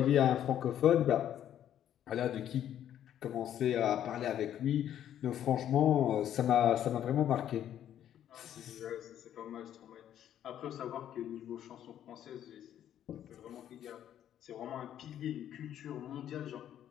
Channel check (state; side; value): quieter; right; 10.7 dB